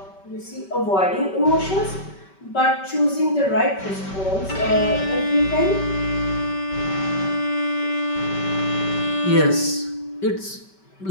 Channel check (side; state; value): right; late; 5.2 ms